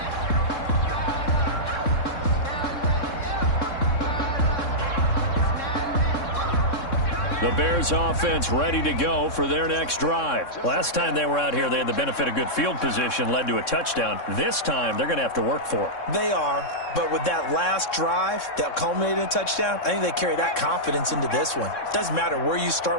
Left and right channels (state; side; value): late; right; 3.6 ms